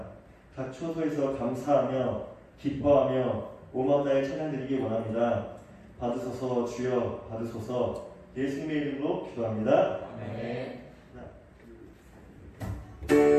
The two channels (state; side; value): identical; both; correlation 1.00